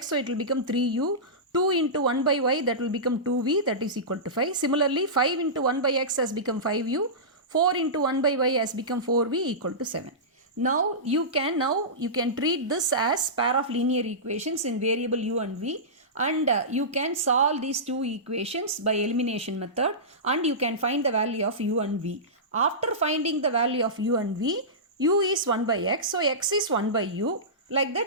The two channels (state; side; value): normal; both; correlation -0.19